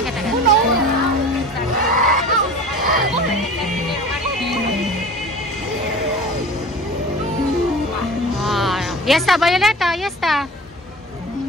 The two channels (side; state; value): both; normal; correlation 0.39